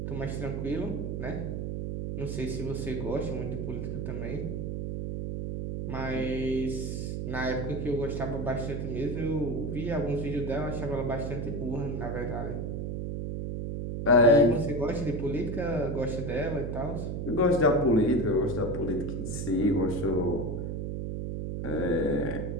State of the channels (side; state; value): right; noise; hum, 3 dB below the sound